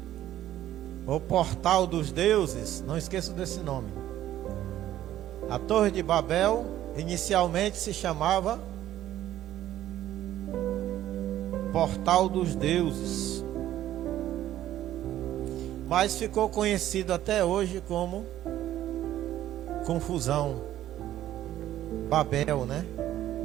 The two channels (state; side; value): quieter; left; 12.9 dB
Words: o portal dos deuses, não esqueça desse nome. A Torre de Babel inicialmente se chamava Portal dos Deuses, mas ficou conhecido até hoje como confusão. Babel, né?